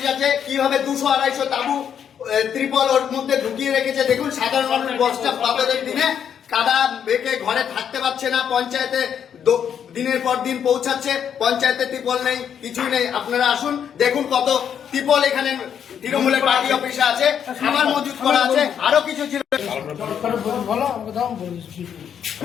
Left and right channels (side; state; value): right; quieter; 8.4 dB